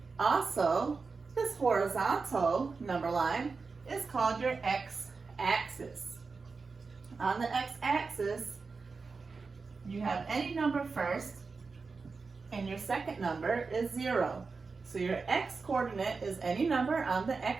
Also, this horizontal number line is called your x-axis. On the x-axis, you have any number first, and your second number is 0. So your x-coordinate is any number on the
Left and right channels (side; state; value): left; quieter; 4.5 dB